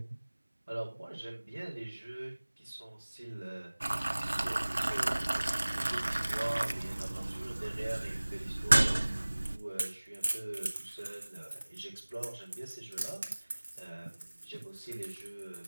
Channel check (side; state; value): both; inverted; correlation -1.00